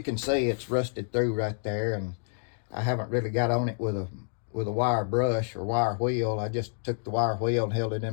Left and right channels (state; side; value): silent; right; digital silence